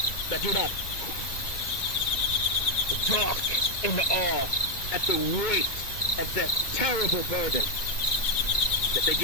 that do not talk in awe at the weight of that terrible burden, that they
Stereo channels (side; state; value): right; late; 1.9 ms